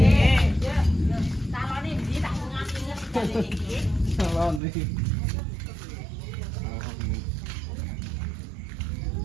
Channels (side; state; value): left; drops out; at 4.6 s